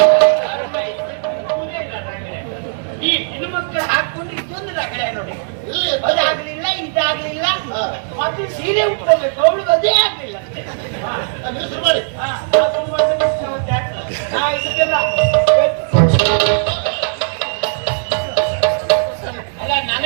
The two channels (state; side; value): silent; left; digital silence